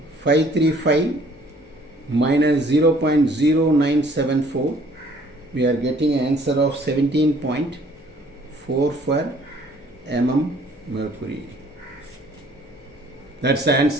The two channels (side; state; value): both; normal; correlation 0.58